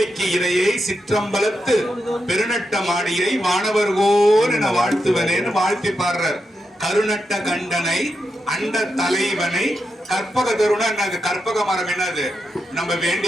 இறையை சிற்றம்பலத்து பெருநட்ட மாடியை வானவர்கோர் என வாழ்த்துவனேன்னு வாழ்த்தி பாடுறார் கருநட்ட கண்டனை அண்ட தலைவனை கற்பக தருணா கற்பக மரம் என்னது நம்ம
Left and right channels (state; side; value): normal; both; correlation 0.86